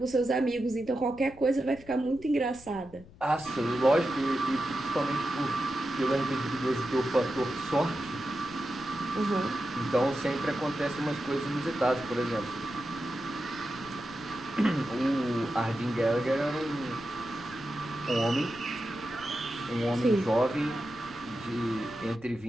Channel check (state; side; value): noise; left; rumble, 21 dB below the sound